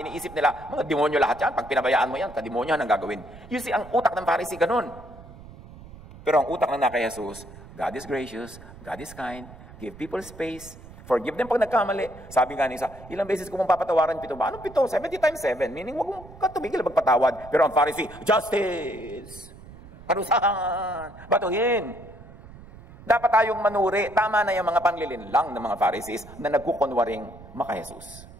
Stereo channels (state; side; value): noise; right; rumble, 18 dB below the sound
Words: Iniisip nila, mga demonyo lahat yan. Pag pinabayaan mo yan, kademonyo ang gagawin. You see, ang utak ng Pharisee ganun. Pero ang utak ng kay Jesus, God is gracious, God is kind, give people space, forgive them pag nagkamali. Sabi nga ni isa, ilang beses ko mong papatawaran 7 ba? Anong 7? 70 times 7. Meaning, wag mong katumigil magpatawad. Pero ang Pharisee, justice! Parusahan! Batuhin! Dapat tayong manuri. Tama na yung mga panglilinlang ng mga Pharisees na nagkukunwaring maka-Jesus.